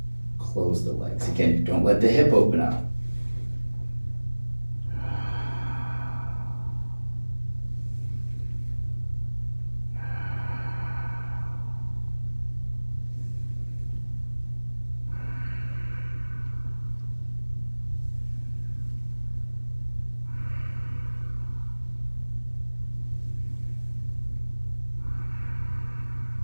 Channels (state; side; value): inverted; both; correlation -1.00